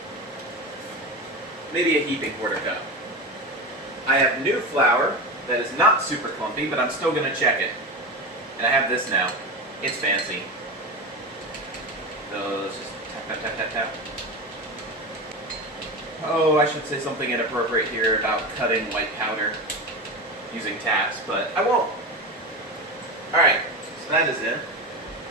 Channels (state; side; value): normal; both; correlation 0.23